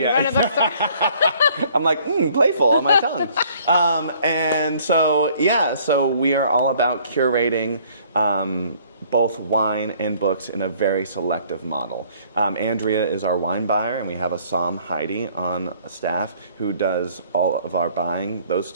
You run a bookstore. I'm like, playful on my tongue. And so, yeah, so we are all about curating both wine and books in a very selective model. Andrea is our wine buyer, and we have a Psalm Heidi on staff who does all of our buying, those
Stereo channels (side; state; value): both; inverted; correlation -0.59